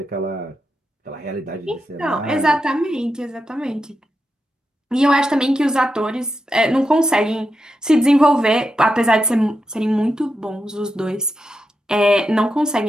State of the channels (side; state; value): both; normal; correlation 0.87